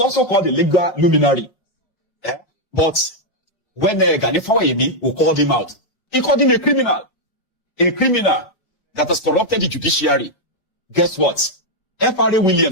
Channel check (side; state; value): right; late; 5.1 ms